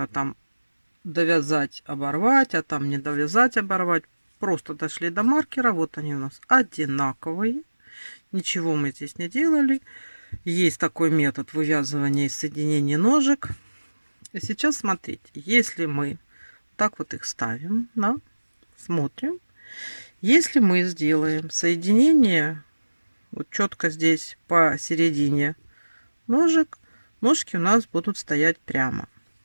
там довязать, оборвать, а там не довязать, оборвать. Просто дошли до маркера. Вот они у нас одинаковые. Ничего мы здесь не делали. Есть такой метод вывязывания и соединения ножек. И сейчас смотрите, если мы так вот их ставим, да, смотрим. Если мы сделаем соединение вот четко здесь посередине ножек, ножки у нас будут стоять прямо.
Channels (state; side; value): inverted; both; correlation -1.00